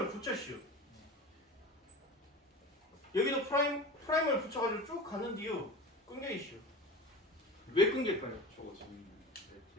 붙였슈. 여기도 프라이머를 붙여가지고 쭉 갔는데요. 끊겨 있슈. 왜 끊길까요? 저거 재밌네.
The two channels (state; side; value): normal; both; correlation 0.32